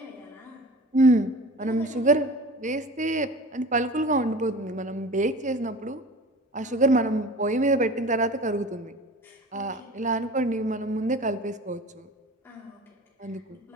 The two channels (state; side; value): normal; both; correlation 0.38